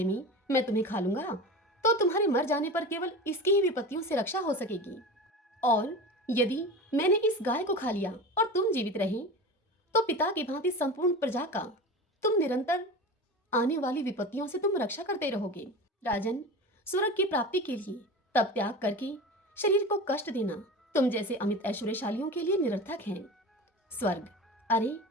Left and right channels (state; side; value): normal; both; correlation 0.31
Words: में मैं तुम्हें खा लूंगा तो तुम्हारे मर जाने पर केवल इसकी ही विपत्तियों से रक्षा हो सकेगी। और यदि मैंने इस गाय को खा लिया और तुम जीवित रहे तो पिता की भांति संपूर्ण प्रजा का तुम निरंतर आने वाली विपत्तियों से तुम रक्षा करते रहोगे। राजन, स्वर्ग की प्राप्ति के लिए तब त्याग करके शरीर को कष्ट देना तुम जैसे अमित ऐश्वर्यशालियों के लिए निरर्थक है। स्वर्ग, अरे